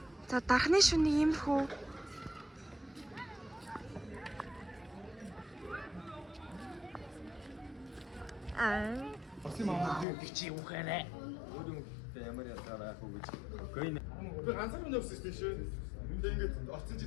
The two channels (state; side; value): drops out; right; at 10.1 s